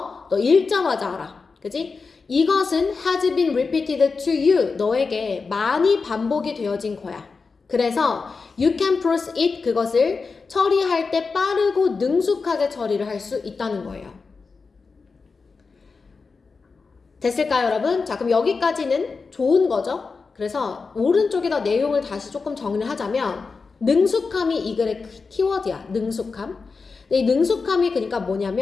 너 읽자마자 알아. 그치? 이것은 has been repeated to you. 너에게 많이 반복이 되어진 거야. 그래서 you can process it. 그것을 처리할 때 빠르고 능숙하게 처리를 할 수 있다는 거예요. 됐을까요, 여러분? 자, 그럼 여기까지는 좋은 거죠? 그래서 오른쪽에다 내용을 다시 조금 정리를 하자면 능숙함이 이 글의 키워드야. 능숙함. 근데 이 능숙함이 그러니까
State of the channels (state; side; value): quieter; right; 4.6 dB